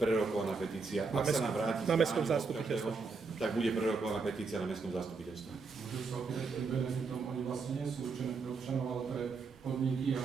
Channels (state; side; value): quieter; left; 4.5 dB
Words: petícia. Ak sa nám vráti na mestskom zastupiteľstve, tak bude prerokovaná petícia na mestskom zastupiteľstve. Môžu sa opýtať, tým benefitom oni vlastne nie sú určené pre občanov, ale pre podniky